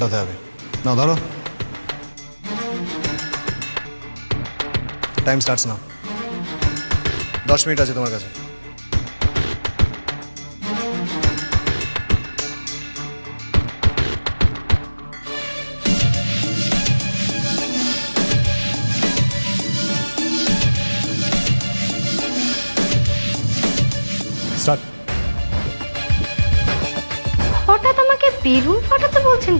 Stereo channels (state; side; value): inverted; both; correlation -1.00